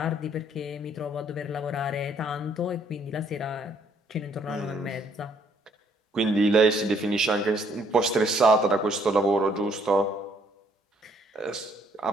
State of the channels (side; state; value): both; normal; correlation 0.66